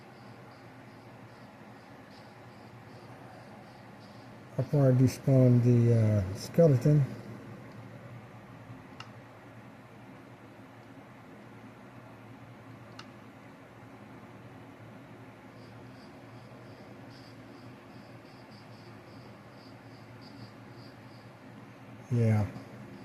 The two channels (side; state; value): both; identical; correlation 1.00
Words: Before I despawn the skeleton. Yeah.